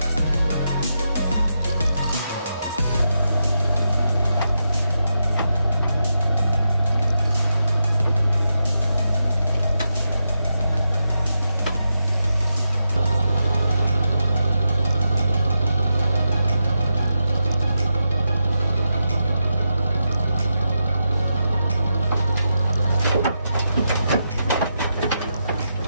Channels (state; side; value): inverted; both; correlation -0.86